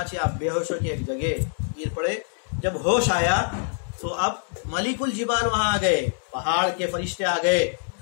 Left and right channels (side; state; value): right; silent; 62 dB below the other